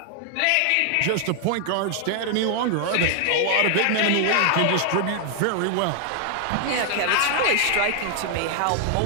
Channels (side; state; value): both; different; correlation 0.00